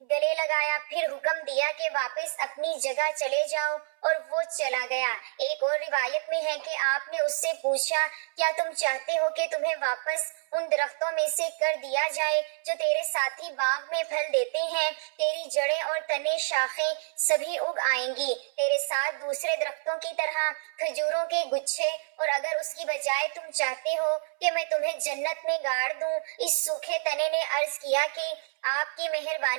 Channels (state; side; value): silent; left; 59 dB below the other